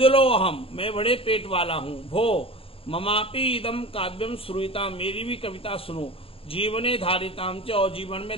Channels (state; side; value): late; right; 0.27 ms